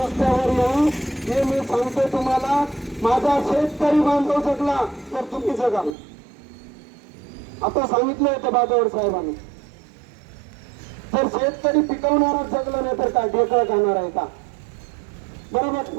येऊ, हे मी सांगतो तुम्हाला। माझा शेतकरी बांधव जगला तर तुम्ही जगाल, आता सांगितलं होतं बाजावर साहेबांनी। जर शेतकरी पिकवणारा जगला नाही तर काय ढेकळं खाणार आहे का? बरोबर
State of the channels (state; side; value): drops out; left; at 6.0 s